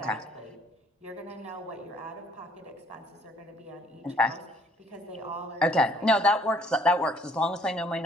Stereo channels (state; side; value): normal; both; correlation 0.61